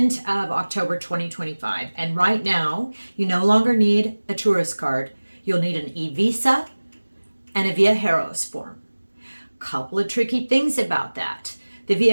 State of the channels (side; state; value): both; inverted; correlation -1.00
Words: of October 2025, and right now you no longer need a tourist card. You'll need an e-visa and a Viajeros form. Couple of tricky things about that. The